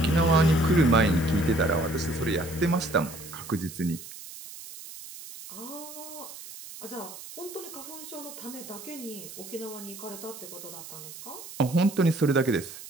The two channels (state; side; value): noise; right; hiss, 14 dB below the sound